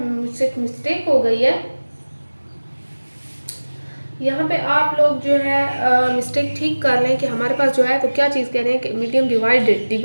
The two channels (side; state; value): both; inverted; correlation -1.00